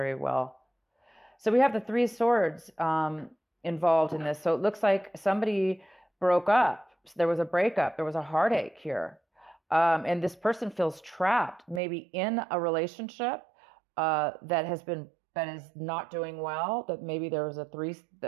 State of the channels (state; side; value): drops out; left; at 11.8 s